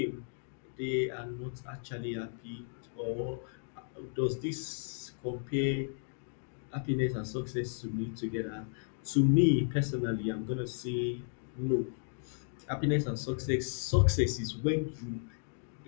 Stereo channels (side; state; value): right; silent; digital silence